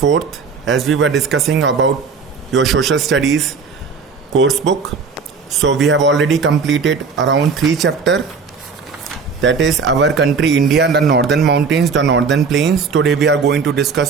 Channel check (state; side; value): quieter; left; 5.2 dB